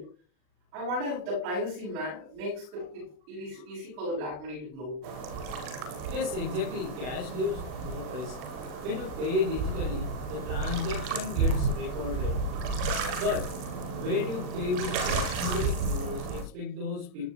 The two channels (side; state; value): left; late; 40 ms